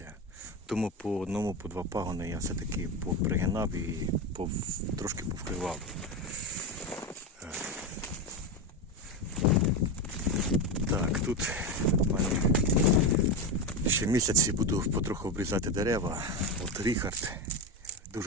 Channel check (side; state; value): both; normal; correlation 0.15